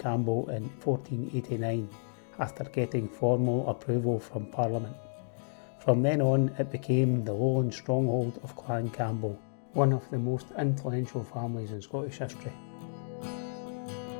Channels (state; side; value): silent; right; digital silence